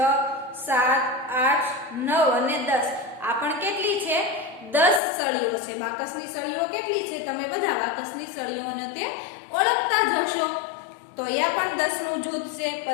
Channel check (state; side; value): drops out; right; at 5.0 s